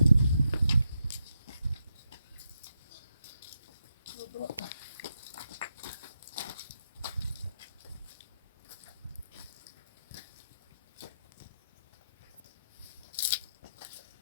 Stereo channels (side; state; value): both; inverted; correlation -0.83